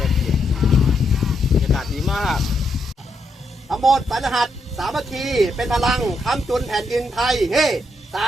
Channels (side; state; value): both; normal; correlation 0.79